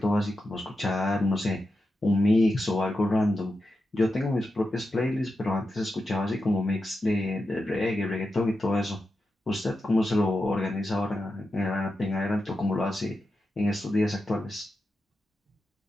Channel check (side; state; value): both; normal; correlation 0.89